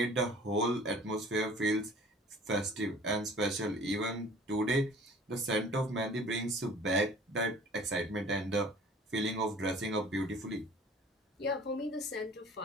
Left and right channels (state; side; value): normal; both; correlation 0.48